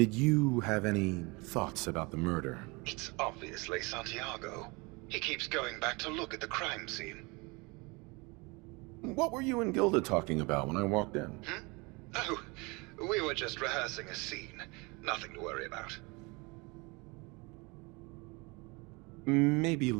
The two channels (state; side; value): quieter; left; 27.1 dB